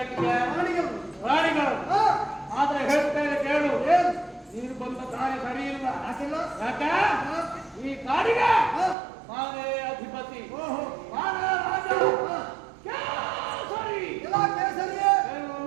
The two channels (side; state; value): left; drops out; at 9.0 s